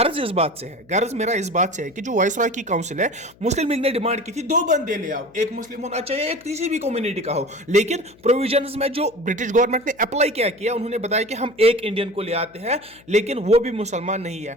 मेरा इस बात से है कि जो वायसराय की काउंसिल है, मुस्लिम लीग ने डिमांड की थी 2 बंदे ले आओ, एक मुस्लिम होना चाहिए, एक किसी भी कम्युनिटी का हो। लेकिन प्रोविजंस में जो ब्रिटिश गवर्नमेंट ने अप्लाई क्या किया, उन्होंने बताया कि हम एक इंडियन को ले आते हैं, लेकिन वो भी मुसलमान नहीं है,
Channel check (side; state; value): left; noise; hum, 28 dB below the sound